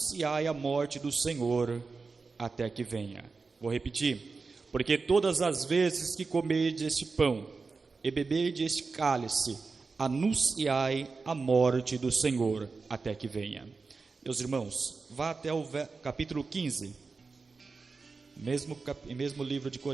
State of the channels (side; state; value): left; quieter; 4.4 dB